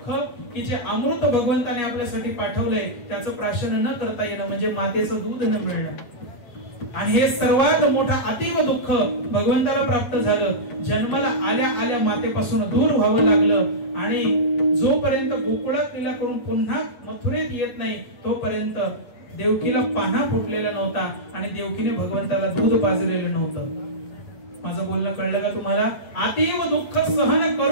की जे अमृत भगवंताने आपल्यासाठी पाठवलंय त्याचं प्राशन न करता येणं म्हणजे मातेचं दूध न मिळणं. आणि हे सर्वात मोठं अतीव दुःख भगवंताला प्राप्त झालं. जन्माला आल्या आल्या मातेपासून दूर व्हावं लागलं आणि जोपर्यंत गोकुळात लीला करून पुन्हा मथुरेत येत नाही तोपर्यंत देवकीला पान्हा फुटलेला नव्हता आणि देवकीने भगवंताला दूध पाजलेलं नव्हतं. माझं बोलणं कळलं का तुम्हाला. अतीव दुःख सहन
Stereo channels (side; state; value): right; late; 8.8 ms